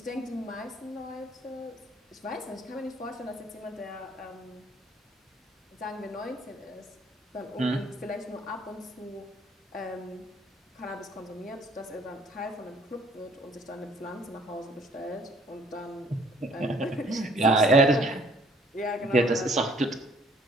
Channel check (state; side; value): normal; both; correlation 0.60